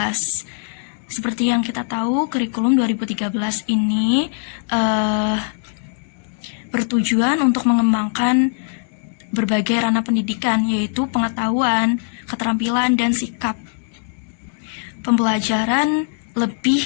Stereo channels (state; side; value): silent; right; 65 dB below the other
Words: Seperti yang kita tahu, kurikulum 2013 ini bertujuan untuk mengembangkan berbagai ranah pendidikan, yaitu pengetahuan, keterampilan, dan sikap. Pembelajaran